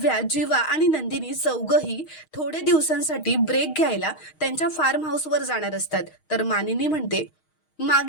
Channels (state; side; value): late; right; 6.4 ms